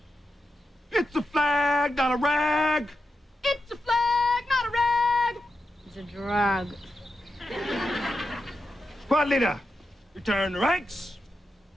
It's a flag, not a rag. It's a flag, not a rag. It's a drag. Squad leader, return to ranks.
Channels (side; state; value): both; normal; correlation 0.88